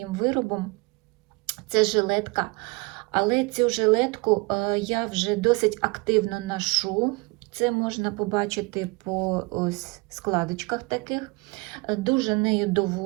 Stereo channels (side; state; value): left; quieter; 27.2 dB